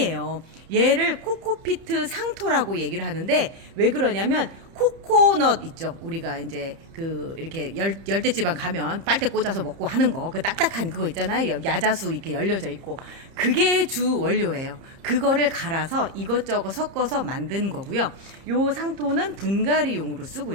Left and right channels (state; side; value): late; left; 30 ms